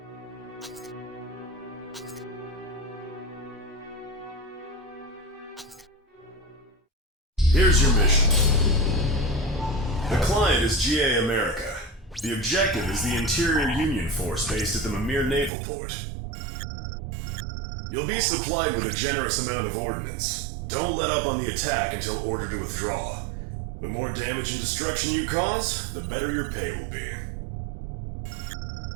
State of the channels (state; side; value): drops out; left; at 15.5 s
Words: Here's your mission. The client is GA America. The objective is the Interior Union Force based at the Mimir Naval Port. You'll be supplied with a generous amount of ordnance. Don't let up on the attack until ordered to withdraw. The more damage and destruction you cause, the better your pay will be.